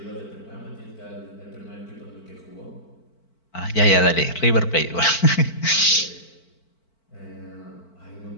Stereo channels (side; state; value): right; late; 4.5 ms